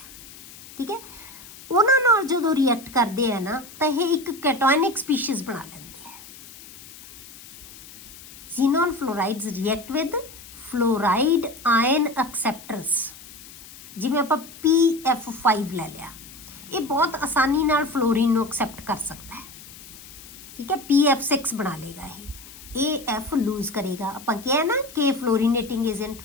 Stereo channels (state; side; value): noise; left; hiss, 18 dB below the sound